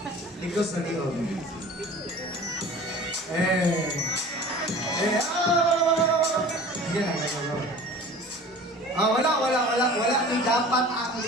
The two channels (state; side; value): normal; both; correlation 0.42